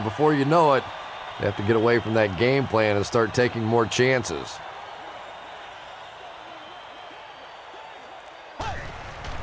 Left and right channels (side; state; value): both; identical; correlation 1.00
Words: before you know it, you have to get away from that game plan and start taking more chances.